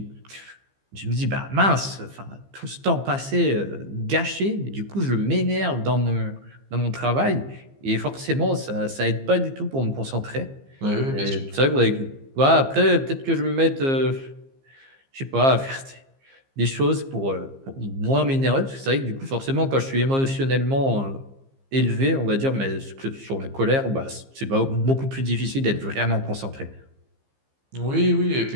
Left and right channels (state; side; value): late; left; 15 ms